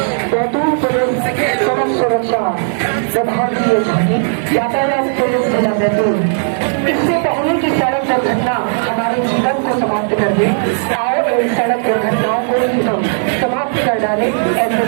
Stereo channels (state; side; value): silent; left; digital silence